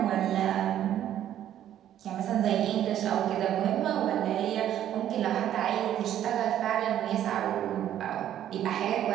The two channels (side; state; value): left; quieter; 11.2 dB